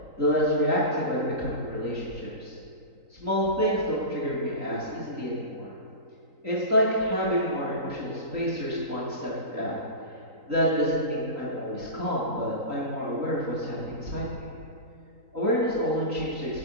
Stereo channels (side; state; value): left; late; 3.9 ms